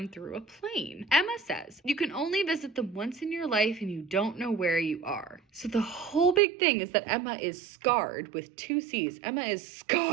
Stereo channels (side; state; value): left; drops out; at 6.4 s